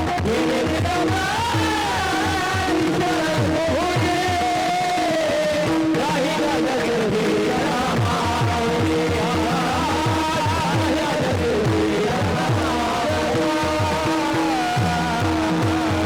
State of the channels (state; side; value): identical; both; correlation 1.00